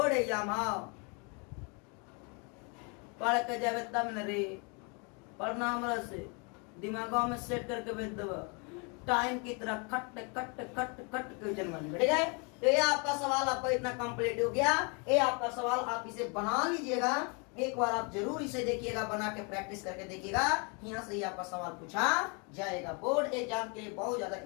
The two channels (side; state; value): right; quieter; 33.8 dB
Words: एग्जाम पढ़ के जावे तब न रे, पढ़ना हमरा से दिमागों में सेट करके भेज देव, टाइम की तरह cut cut cut cut question बन गया, ठीक है। तो ये आपका सवाल आपका इतना कंप्लीट हो गया। ये आपका सवाल आप इसे बना लीजिएगा, एक बार आप जरूर इसे देखिएगा, बना के प्रैक्टिस करके देखिएगा, यहाँ से ही आपका सवाल पूछा जाएगा। बोर्ड एग्जाम के लिए बहुत ज्यादा